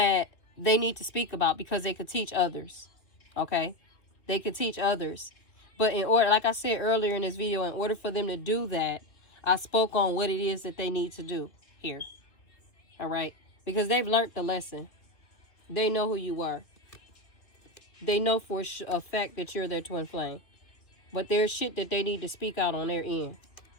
they need to speak about, because they could teach others. Okay, they could teach others. But in order, like I said earlier in this video, in order for them to do that, I spoke on what it is that they need to do here. All right, because they've learned the lesson. They know who you are. They know for a fact that you're their twin flame. But there's shit that they need to speak out on their end.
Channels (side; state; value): right; late; 2.5 ms